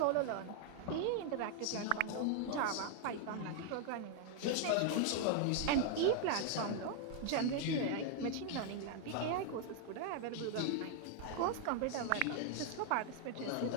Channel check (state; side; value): different; both; correlation 0.00